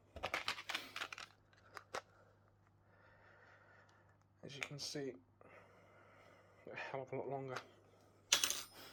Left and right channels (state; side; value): identical; both; correlation 1.00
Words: as you can see, a hell of a lot longer.